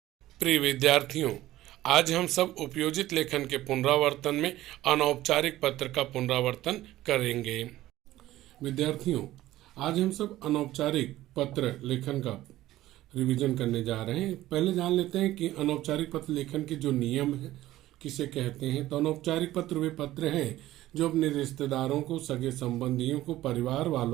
प्रिय विद्यार्थियों, आज हम सब उपयोजित लेखन के पुनरावर्तन में अनौपचारिक पत्र का पुनरावर्तन करेंगे। विद्यार्थियों, आज हम सब अनौपचारिक पत्र लेखन का रिवीजन करने जा रहे हैं। पहले जान लेते हैं कि अनौपचारिक पत्र लेखन के जो नियम है किसे कहते हैं। तो अनौपचारिक पत्र वे पत्र हैं जो अपने रिश्तेदारों को, सगे संबंधियों को, परिवार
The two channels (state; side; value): quieter; left; 15.3 dB